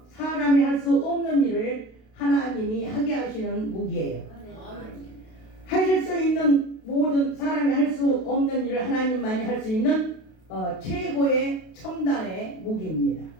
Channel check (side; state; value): right; late; 32 ms